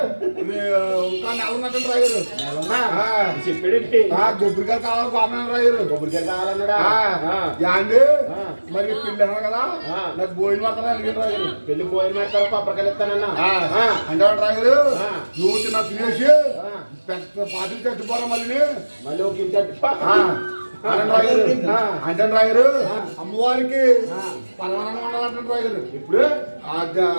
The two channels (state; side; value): inverted; both; correlation -1.00